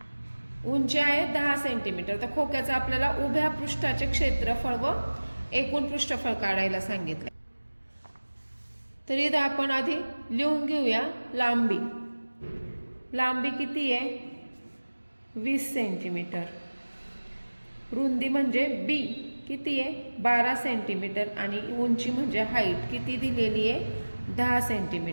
उंची आहे 10 सेंटीमीटर. तर खोक्याचं आपल्याला उभ्या पृष्ठाचे क्षेत्रफळ व एकूण पृष्ठफळ काढायला सांगितलं. तर इथं आपण आधी लिहून घेऊया लांबी. लांबी किती आहे 20 सेंटीमीटर. रुंदी म्हणजे B किती आहे 12 सेंटीमीटर आणि उंची म्हणजे हाईट किती दिलेली आहे 10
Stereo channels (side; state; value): both; inverted; correlation -1.00